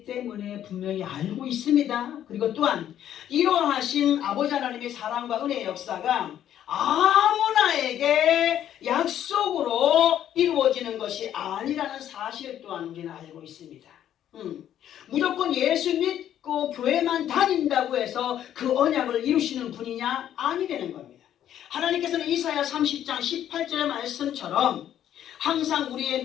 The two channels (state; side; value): quieter; right; 10.8 dB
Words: 때문에 분명히 알고 있습니다. 그리고 또한 이러하신 아버지 하나님의 사랑과 은혜의 역사가 아무나에게 약속으로 이루어지는 것이 아니라는 사실 또한 우리는 알고 있습니다. 무조건 예수 믿고 교회만 다닌다고 해서 그 언약을 이루시는 분이냐? 아니라는 겁니다. 하나님께서는 이사야 30장 18절의 말씀처럼 항상